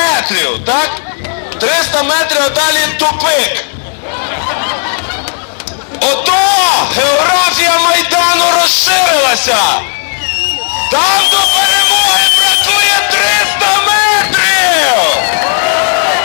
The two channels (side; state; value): right; silent; 66 dB below the other